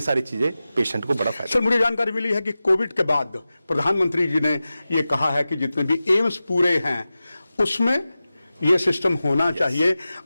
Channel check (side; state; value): both; inverted; correlation -0.95